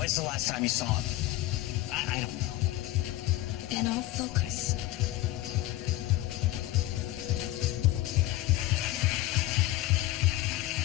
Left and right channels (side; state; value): right; quieter; 16.3 dB